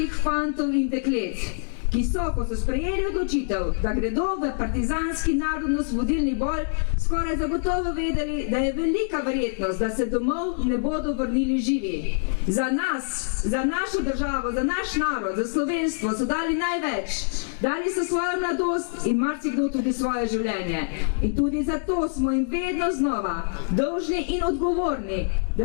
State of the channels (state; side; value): silent; right; digital silence